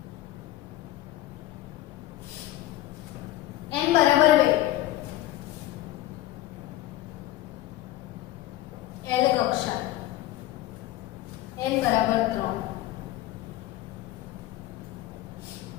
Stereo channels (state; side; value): quieter; right; 15.1 dB